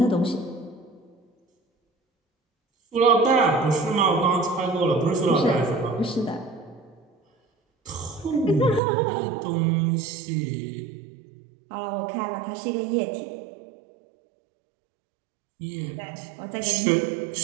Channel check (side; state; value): left; drops out; at 8.8 s